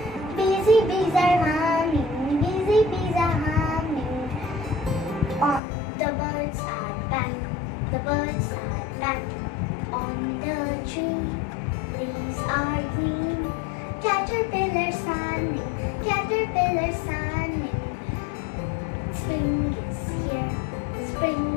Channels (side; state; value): right; drops out; at 5.6 s